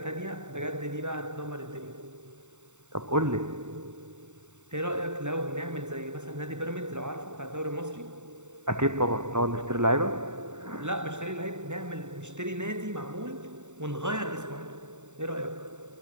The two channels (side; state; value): left; late; 0.84 ms